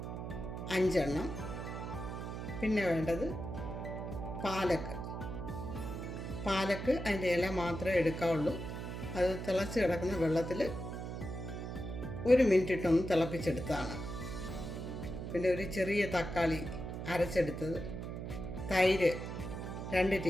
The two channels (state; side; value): noise; right; hum, 6 dB below the sound